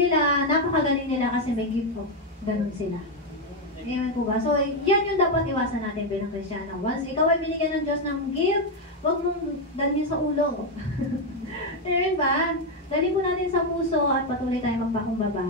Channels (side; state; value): both; normal; correlation 0.05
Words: napakagaling nila kasi may gift of ganun sila. Amen po ba? So, yan yung dapat iwasan natin bilang Kristiyano. Once ikaw ay binigyan ng Diyos ng gift, huwag mong dalhin sa ulo. Amen ba? Dalhin po natin sa puso at patuloy tayo